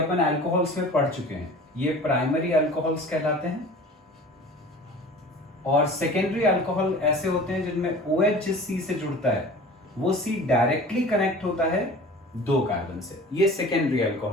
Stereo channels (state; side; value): normal; both; correlation 0.41